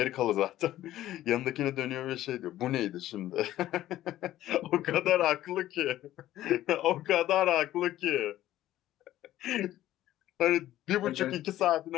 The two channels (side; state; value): right; quieter; 13.9 dB